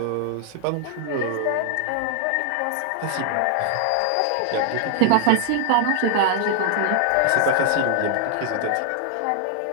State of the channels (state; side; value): different; both; correlation 0.00